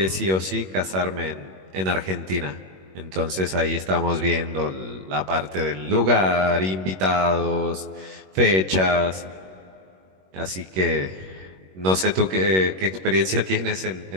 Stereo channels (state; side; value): late; left; 21 ms